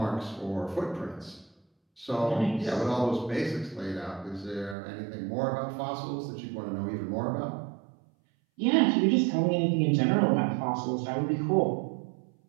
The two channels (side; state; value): left; drops out; at 4.8 s